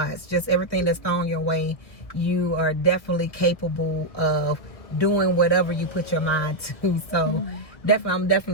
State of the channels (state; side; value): late; right; 1.5 ms